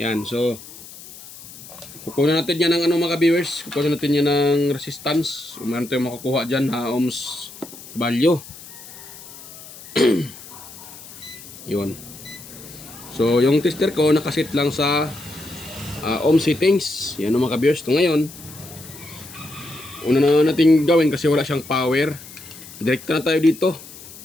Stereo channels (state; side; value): noise; left; hiss, 17 dB below the sound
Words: so kukunin natin yan ng mga ka-viewers, kukunin natin yan ng resistance. Meron tayong makukuha dyan na ohms value. Yun. So yung tester ko nakasit lang sa ohm settings. Yan mga ka-viewers. Ito ngayon, una na natin gawin kasi wala siyang power. Direkta na tayo dito